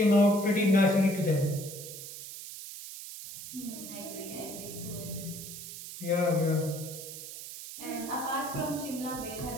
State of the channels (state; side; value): noise; right; hiss, 11 dB below the sound